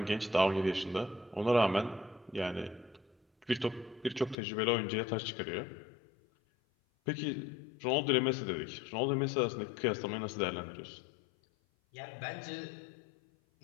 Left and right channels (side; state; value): right; drops out; at 4.4 s